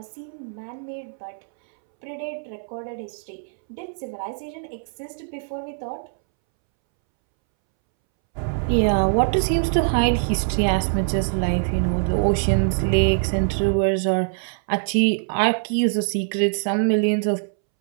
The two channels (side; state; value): left; silent; 63 dB below the other